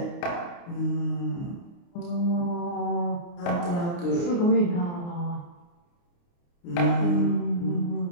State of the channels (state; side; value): late; right; 29 ms